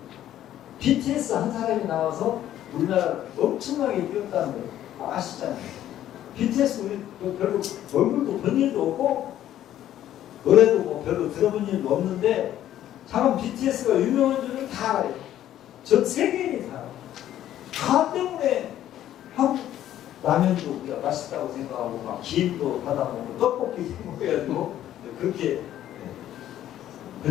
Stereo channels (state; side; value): quieter; right; 12.1 dB